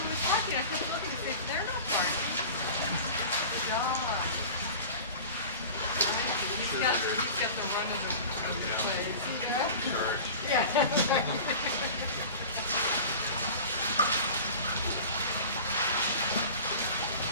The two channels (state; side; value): inverted; both; correlation -0.37